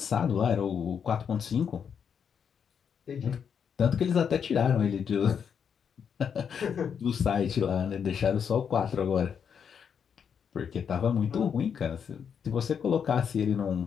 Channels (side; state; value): right; quieter; 7.3 dB